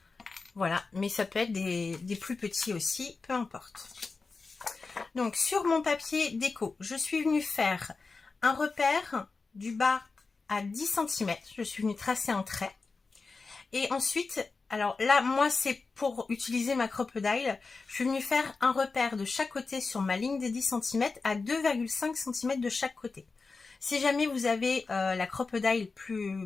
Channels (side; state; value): right; quieter; 4.2 dB